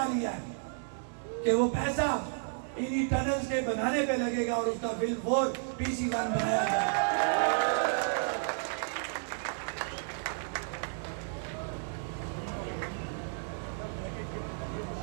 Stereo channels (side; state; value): left; silent; digital silence